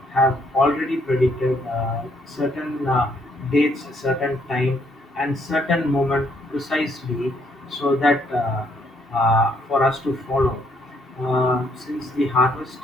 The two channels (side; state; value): both; normal; correlation 0.70